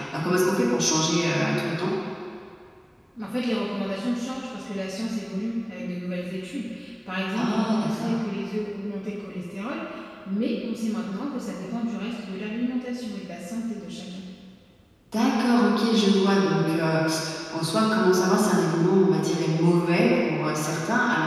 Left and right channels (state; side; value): identical; both; correlation 1.00